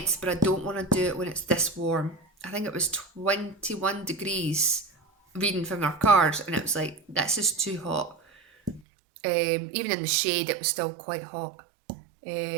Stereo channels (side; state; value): left; drops out; at 8.8 s